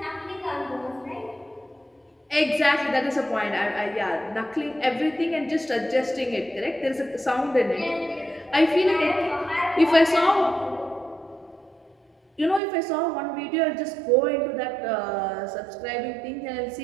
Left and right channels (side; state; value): left; drops out; at 12.6 s